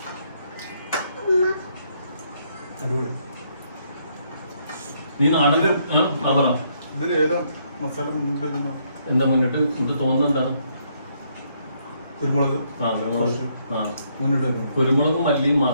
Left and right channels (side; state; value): both; inverted; correlation -0.72